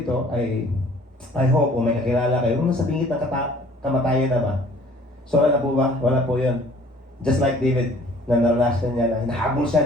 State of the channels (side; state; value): both; normal; correlation 0.54